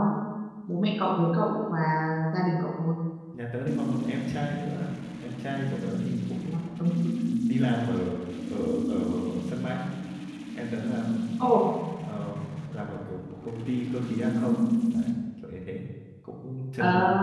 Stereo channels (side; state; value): both; identical; correlation 1.00